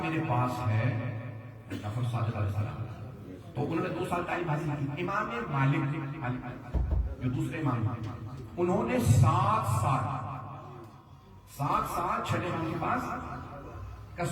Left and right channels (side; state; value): both; identical; correlation 1.00